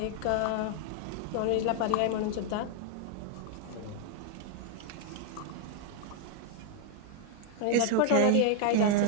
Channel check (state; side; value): different; both; correlation 0.00